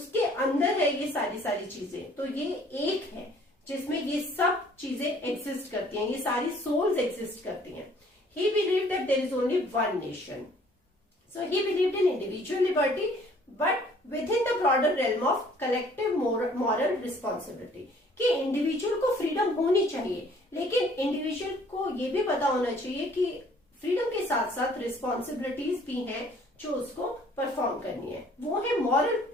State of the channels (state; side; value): normal; both; correlation 0.57